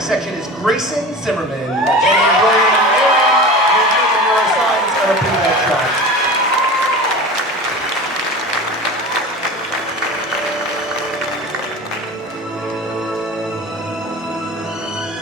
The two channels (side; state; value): both; normal; correlation 0.33